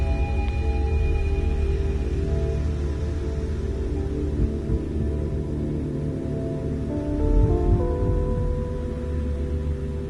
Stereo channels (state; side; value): identical; both; correlation 1.00